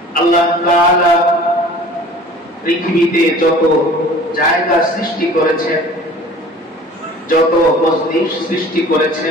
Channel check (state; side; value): normal; both; correlation 0.45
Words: আল্লাহ তাআলা পৃথিবীতে যত জায়গা সৃষ্টি করেছেন, যত মসজিদ সৃষ্টি